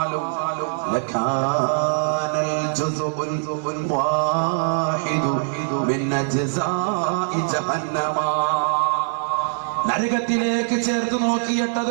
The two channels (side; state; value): left; silent; digital silence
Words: ലകാനൽ ജുസുഉൽ വാഹിദു മിൻ അജ്സാഇ ജഹന്നമ, നരകത്തിലേക്ക് ചേർത്ത് നോക്കിയിട്ട്